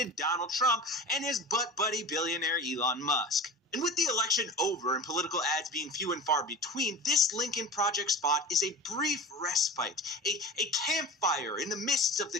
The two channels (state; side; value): normal; both; correlation 0.33